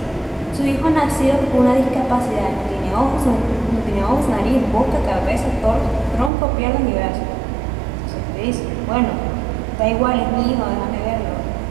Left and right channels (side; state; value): left; drops out; at 6.3 s